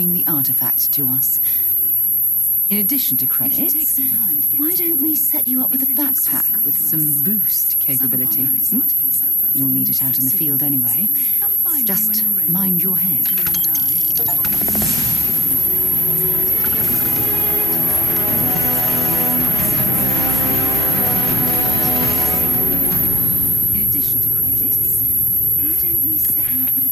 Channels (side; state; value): both; normal; correlation 0.97